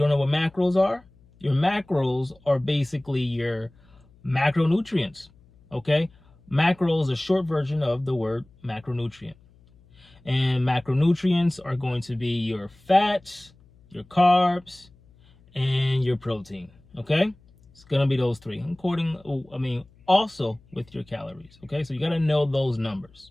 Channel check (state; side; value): noise; left; hum, 29 dB below the sound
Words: know what macros are, your macros are basically your macronutrients, okay? Macro is a short version of the word macronutrient. And macronutrients are going to be your fats, your carbs, and your protein, okay? It's gonna be those 3, also with your calories, okay? So you gotta know those